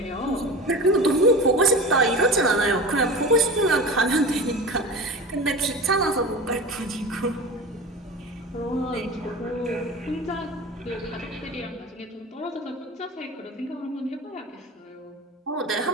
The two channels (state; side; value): normal; both; correlation 0.32